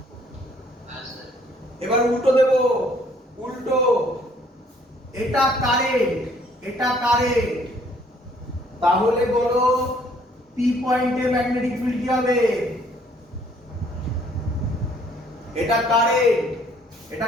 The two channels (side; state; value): both; normal; correlation 0.62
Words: এবার উল্টো দেব, উল্টো। এটা কারেন্ট, তাহলে বলো পি পয়েন্টে ম্যাগনেটিক ফিল্ড কি হবে? এটা কারেন্ট,